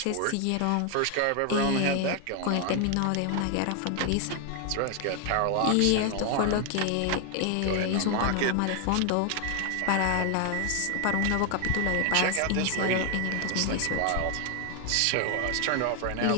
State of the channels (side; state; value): both; different; correlation 0.00